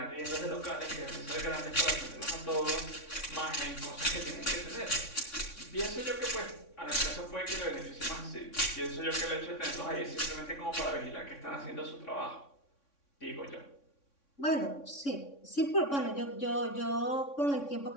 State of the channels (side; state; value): right; late; 3.6 ms